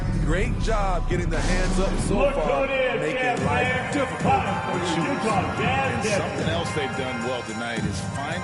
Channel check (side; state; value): both; identical; correlation 1.00